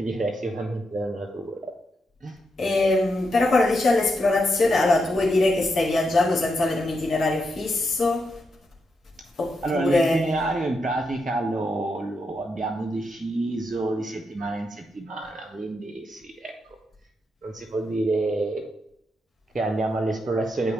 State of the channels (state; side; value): normal; both; correlation 0.83